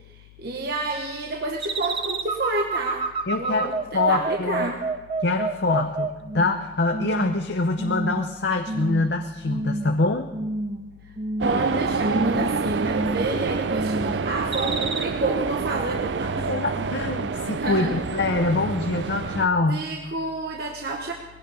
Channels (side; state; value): left; noise; hum, 24 dB below the sound